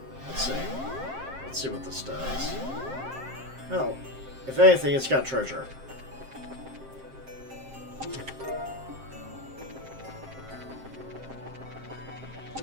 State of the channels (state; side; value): late; left; 7.6 ms